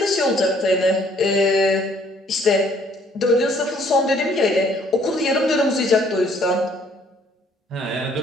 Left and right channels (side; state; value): both; normal; correlation 0.62